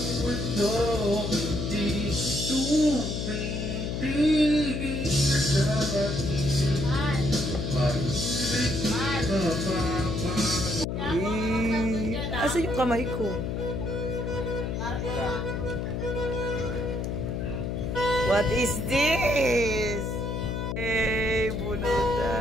mundo, hindi tumitigil sa pag-ibig. Pag-ibig mapapagod. Asa yung kamay ko? What is this? Hey,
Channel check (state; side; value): noise; left; hum, 2 dB below the sound